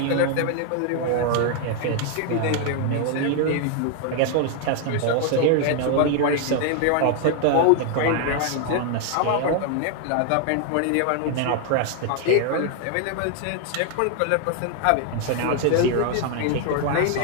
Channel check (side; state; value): both; different; correlation 0.00